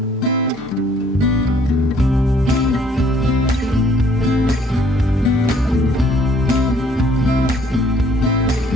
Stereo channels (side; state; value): both; normal; correlation 0.61